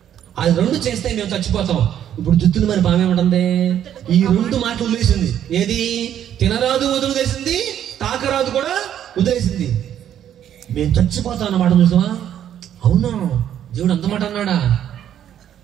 అది రెండు చేస్తే మేము చచ్చిపోతాం. ఇప్పుడు జుత్తులు మరి పాము ఏమంటుంది? ఈ రెండు మాటలు వదిలేసింది. ఏది? తినరాదు వదిలేసింది, తాకరాదు కూడా వదిలేసింది. మేము చచ్చిపోతాం అన్నమాట. చూసావా? అవునా, దేవుడు అంత మాట అన్నాడా?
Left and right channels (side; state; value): left; quieter; 10.3 dB